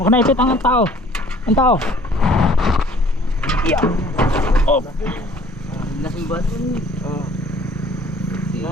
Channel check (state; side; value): normal; both; correlation 0.55